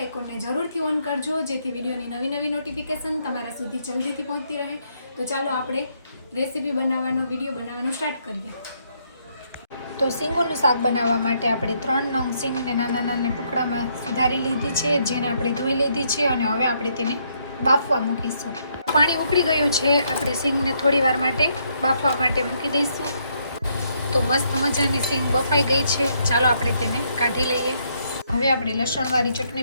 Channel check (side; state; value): both; inverted; correlation -0.73